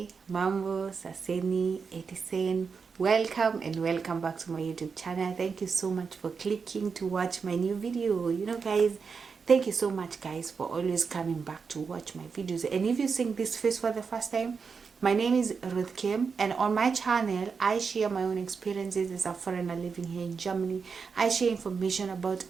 Mambo, Saseni, Etisen, welcome and welcome back to my YouTube channel. Thank you so much for clicking to watch my new video. Guys, thank you so much guys for always coming back to watch my videos. And if you're seeing this face for the first time, my name is Ruth Kim, and on my channel I share my own experiences as a foreigner living here in Germany. I share information about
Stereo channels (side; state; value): left; quieter; 5.5 dB